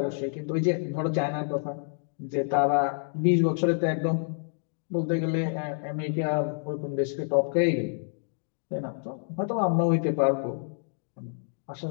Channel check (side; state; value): right; silent; digital silence